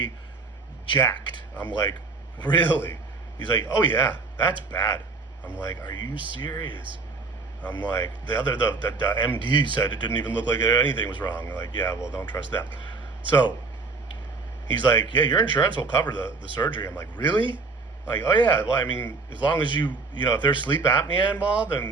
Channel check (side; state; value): left; quieter; 4.1 dB